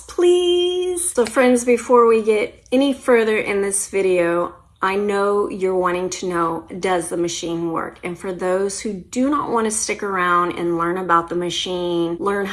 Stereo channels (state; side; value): identical; both; correlation 1.00